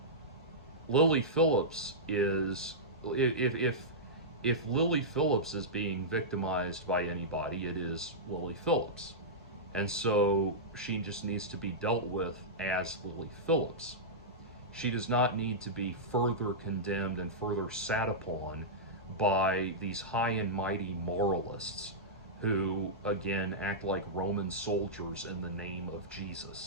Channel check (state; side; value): normal; both; correlation -0.13